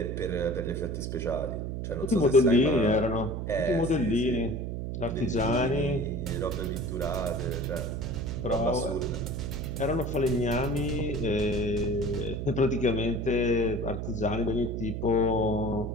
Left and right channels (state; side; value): noise; right; hum, 4 dB below the sound